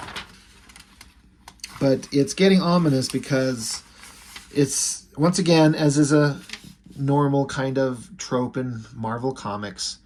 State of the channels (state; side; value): identical; both; correlation 1.00